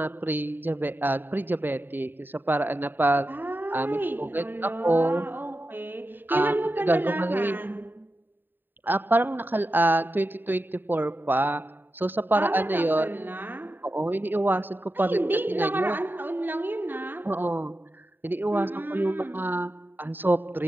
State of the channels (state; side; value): late; left; 0.093 ms